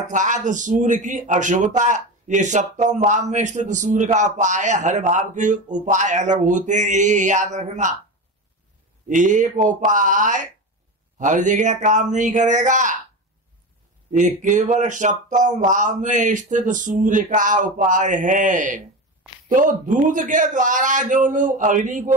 सूर्य की अशुभता। ये 7वें भाव में स्थित सूर्य का उपाय, हर भाव के उपाय अलग होते हैं, ये याद रखना। एक उपाय हर जगह काम नहीं करेगा, ये केवल 7वें भाव में स्थित सूर्य का उपाय है। तो दूध के द्वारा जो लोग अग्नि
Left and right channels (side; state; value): both; normal; correlation 0.23